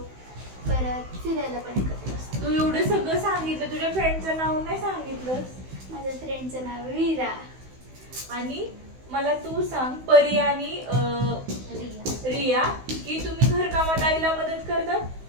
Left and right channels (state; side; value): late; left; 16 ms